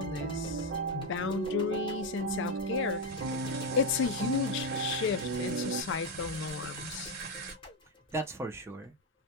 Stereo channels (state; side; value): normal; both; correlation 0.07